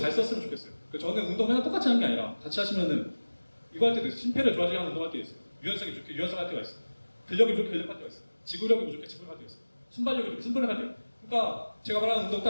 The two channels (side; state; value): both; inverted; correlation -1.00